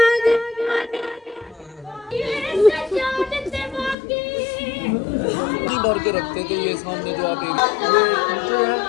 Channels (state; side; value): drops out; right; at 4.0 s